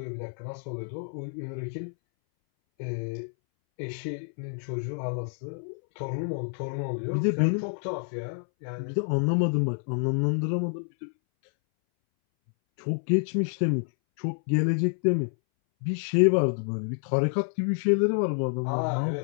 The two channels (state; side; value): silent; right; 59 dB below the other